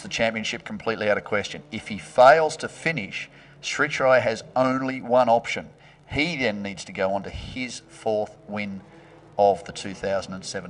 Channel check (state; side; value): identical; both; correlation 1.00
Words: championship completely out of question. If he fails to finish, Sritroy has only one option. He then needs to go on to his 4th win of the